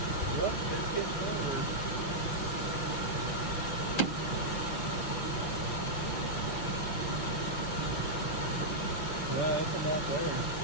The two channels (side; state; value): right; late; 6.3 ms